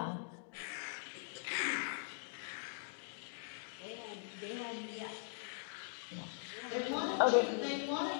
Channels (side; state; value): right; silent; digital silence